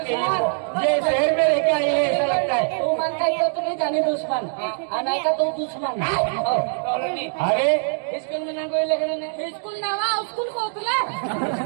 है। ये शहर में रह के आई है ऐसा लगता है। तू मानता है तो नहीं जानी दुश्मन, आना का तो दुश्मन। अरे स्कूल में ना कोई लखने नहीं। स्कूल ना हुआ, स्कूल को उतला।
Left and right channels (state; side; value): silent; left; digital silence